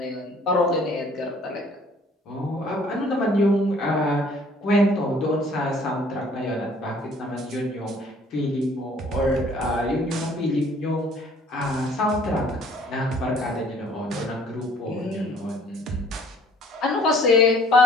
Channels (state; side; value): normal; both; correlation 0.56